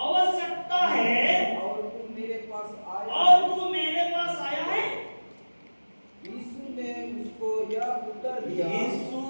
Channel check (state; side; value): inverted; both; correlation -1.00